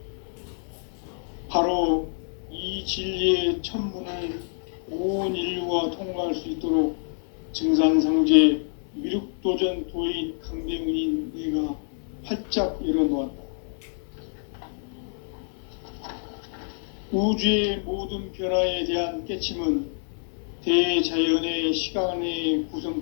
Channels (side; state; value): right; silent; 60 dB below the other